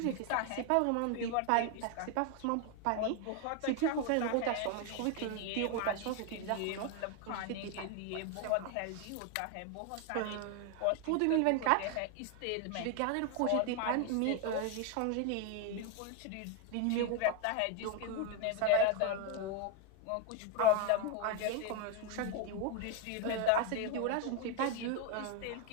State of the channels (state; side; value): different; both; correlation 0.01